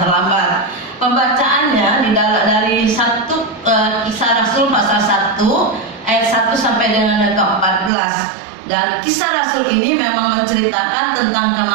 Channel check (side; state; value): left; drops out; at 7.9 s